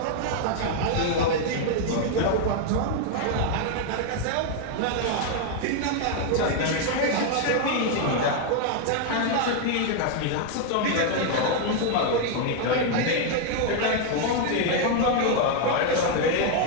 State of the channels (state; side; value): different; both; correlation 0.00